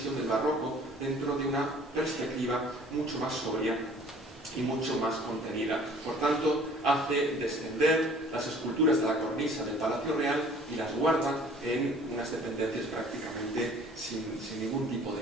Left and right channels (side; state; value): both; normal; correlation 0.52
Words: del barroco dentro de una perspectiva mucho más sobria y mucho más contenida. Por tanto, hace descender las esculturas de la cornisa del Palacio Real y las guarda en unas dependencias prácticamente sin ningún tipo de